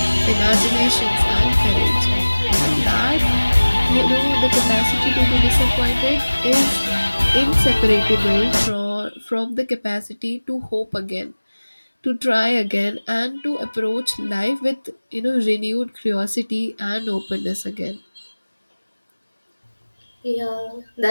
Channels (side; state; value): both; inverted; correlation -1.00